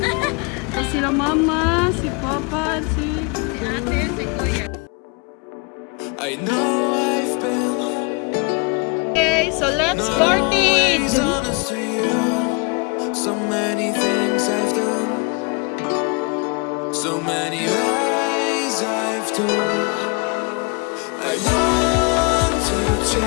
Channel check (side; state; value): right; quieter; 32.3 dB